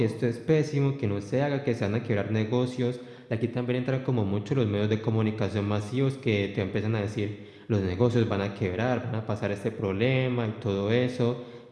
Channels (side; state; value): both; identical; correlation 1.00